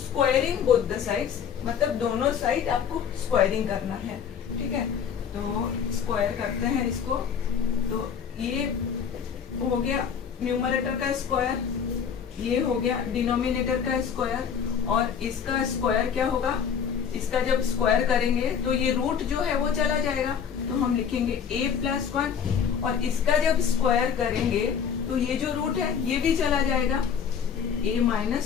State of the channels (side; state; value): right; quieter; 7.4 dB